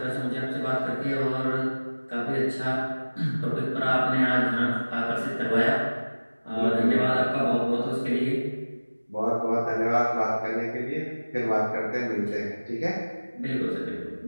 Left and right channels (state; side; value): inverted; both; correlation -1.00